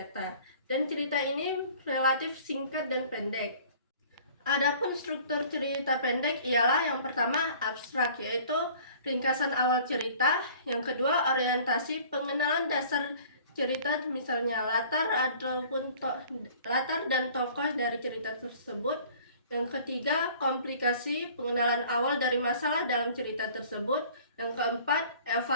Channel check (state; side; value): inverted; both; correlation -0.50